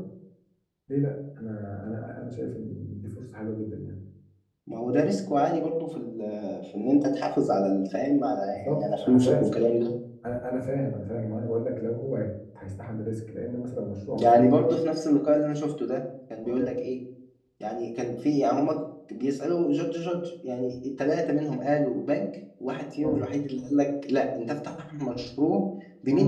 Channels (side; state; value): both; identical; correlation 1.00